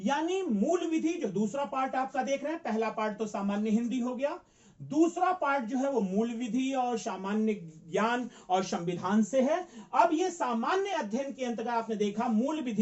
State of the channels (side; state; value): both; identical; correlation 1.00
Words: मूल विधि जो दूसरा पार्ट आपका देख रहे हैं, पहला पार्ट तो सामान्य हिंदी हो गया, दूसरा पार्ट जो है वो मूल विधि और सामान्य ज्ञान और संविधान से है। अब ये सामान्य अध्ययन के अंतर्गत आपने देखा मूल